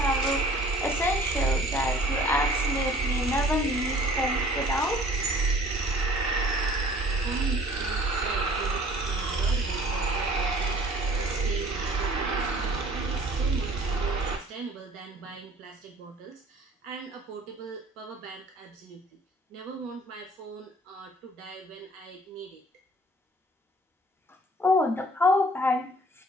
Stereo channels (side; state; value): both; normal; correlation 0.51